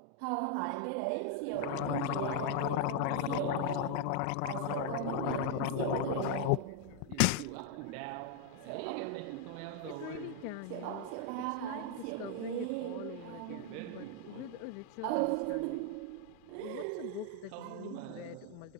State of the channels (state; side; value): different; both; correlation 0.00